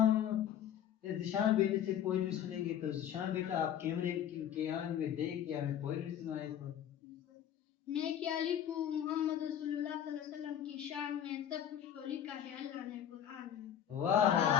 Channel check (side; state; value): right; quieter; 9.9 dB